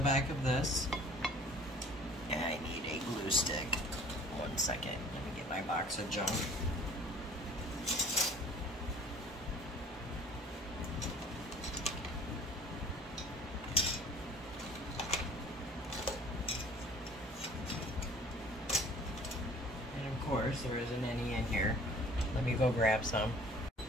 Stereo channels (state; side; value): normal; both; correlation 0.50